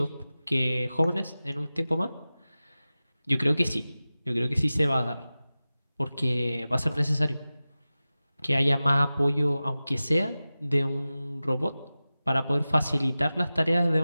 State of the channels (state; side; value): inverted; both; correlation -0.96